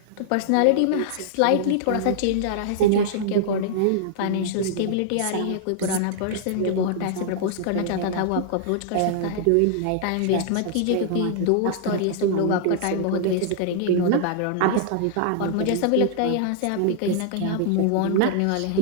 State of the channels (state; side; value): different; both; correlation -0.01